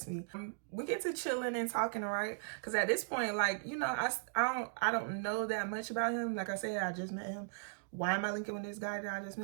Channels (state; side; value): silent; left; digital silence